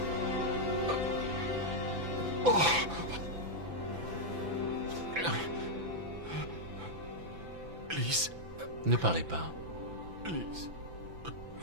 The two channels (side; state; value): left; late; 6.0 ms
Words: Lise. Ne parlez pas. Lise.